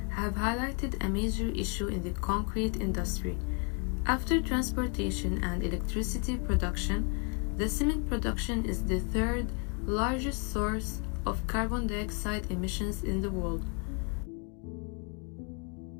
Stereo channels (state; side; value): quieter; right; 37.9 dB